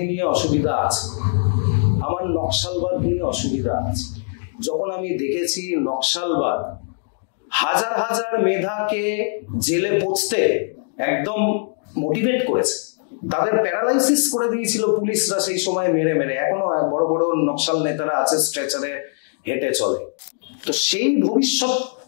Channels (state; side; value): silent; right; 65 dB below the other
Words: নিয়ে অসুবিধা আছে, আমার নকশালবাদ নিয়ে অসুবিধা আছে। যখন আমি দেখেছি নকশালবাদ হাজার হাজার মেধাকে জেলে পৌঁছতে একদম মোটিভেট করেছে, তাদের প্যারালাইসিস করে দিয়েছিল পুলিশরা সেই সময় মেরে মেরে। এখনো বড় বড় নকশাল নেতারা আছে, স্ট্রেচারে হেঁটে চলে। তো সেই ভবিষ্যৎ